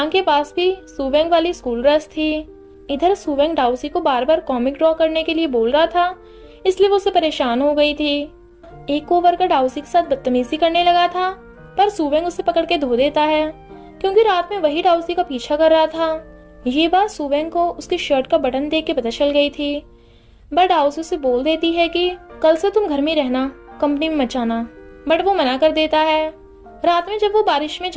के पास भी सुवेंग वाली स्कूल ड्रेस थी। इधर सुवेंग दाओसी को बार बार कॉमिक ड्रॉ करने के लिए बोल रहा था, इसलिए वो उससे परेशान हो गई थी। एक कोवर्कर दाओसी के साथ बदतमीजी करने लगा था, पर सुवेंग उसे पकड़ के धो देता है, क्योंकि रात में वही दाओसी का पीछा कर रहा था। ये बात सुवेंग को उसकी शर्ट का बटन देख के पता चल गई थी। बट दाओसी उसे बोल देती है कि कल से तुम घर में रहना, कंपनी में मत जाना। बट वो मना कर देता है। रात में जब वो बारिश में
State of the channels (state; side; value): identical; both; correlation 1.00